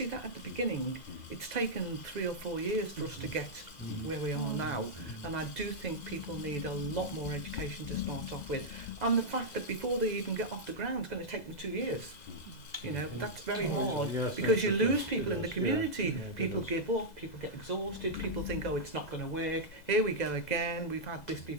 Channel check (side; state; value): right; late; 2.0 ms